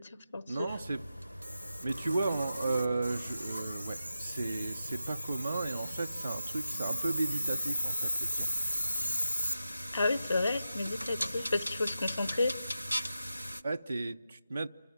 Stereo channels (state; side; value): inverted; both; correlation -0.89